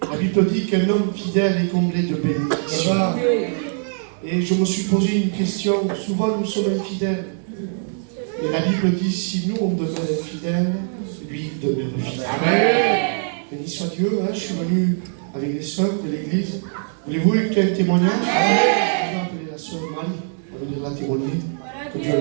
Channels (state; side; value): silent; left; digital silence